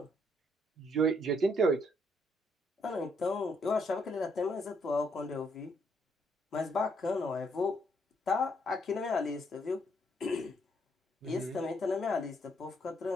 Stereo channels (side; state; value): both; normal; correlation 0.72